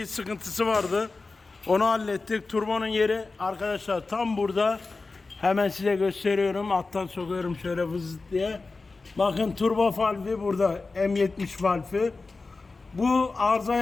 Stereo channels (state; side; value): quieter; right; 3.8 dB